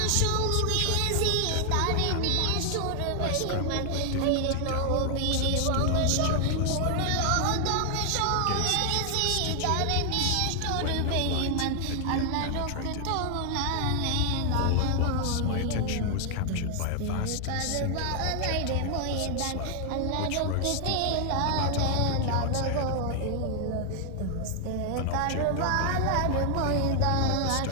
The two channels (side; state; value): both; different; correlation 0.00